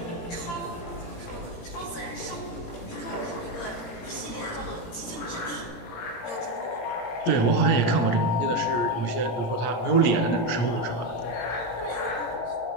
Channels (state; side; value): late; right; 17 ms